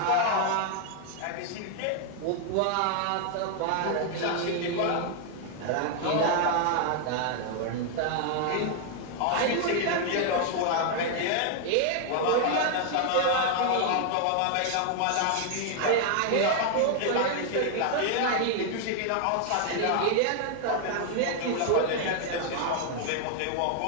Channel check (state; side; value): different; both; correlation 0.00